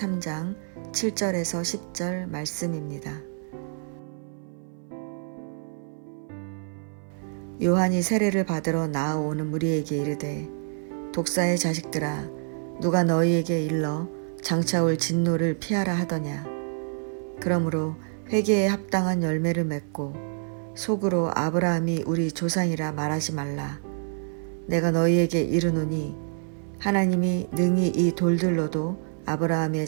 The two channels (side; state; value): left; silent; 57 dB below the other